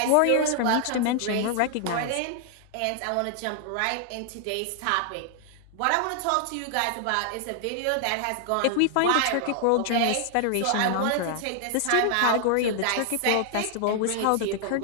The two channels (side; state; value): both; different; correlation 0.00